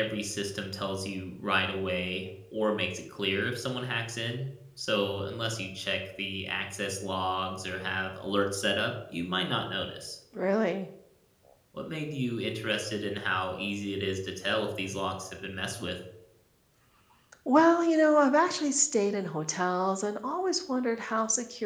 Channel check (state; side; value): identical; both; correlation 1.00